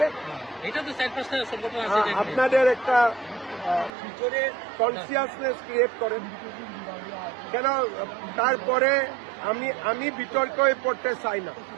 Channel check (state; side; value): drops out; left; at 3.9 s